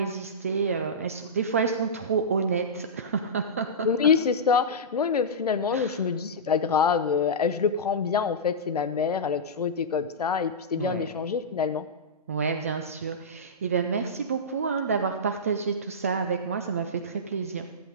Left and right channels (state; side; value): normal; both; correlation -0.15